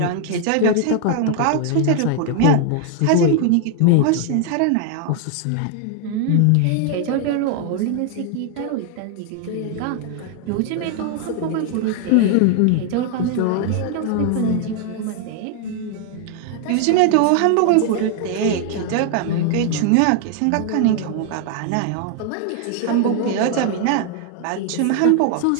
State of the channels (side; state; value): both; different; correlation 0.00